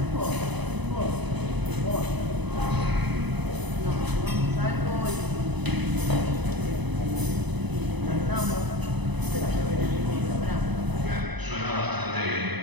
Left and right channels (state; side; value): late; left; 0.99 ms